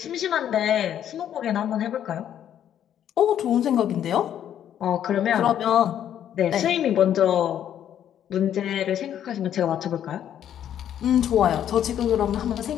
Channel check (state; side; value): quieter; right; 10.2 dB